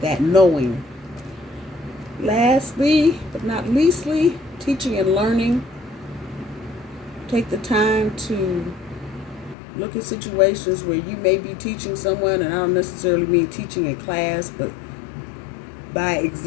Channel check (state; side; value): drops out; right; at 9.6 s